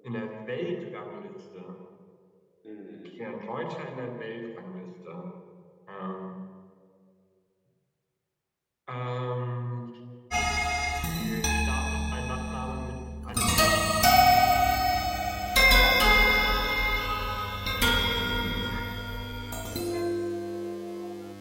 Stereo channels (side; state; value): both; identical; correlation 1.00